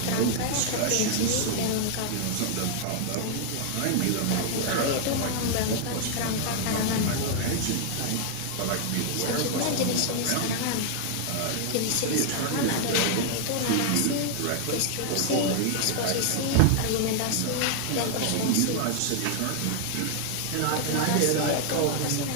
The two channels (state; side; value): different; both; correlation 0.00